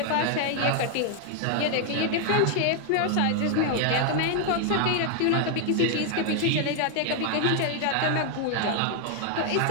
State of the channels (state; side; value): different; both; correlation 0.00